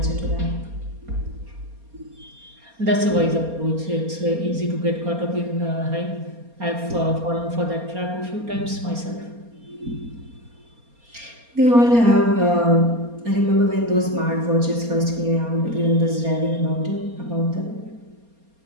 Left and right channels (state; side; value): late; left; 4.3 ms